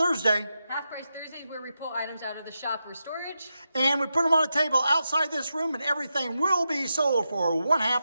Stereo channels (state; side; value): inverted; both; correlation -0.88